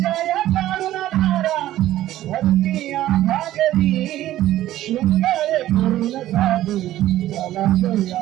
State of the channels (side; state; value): left; quieter; 14.0 dB